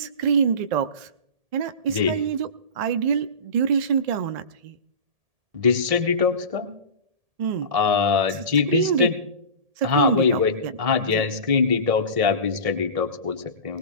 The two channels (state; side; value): late; left; 1.7 ms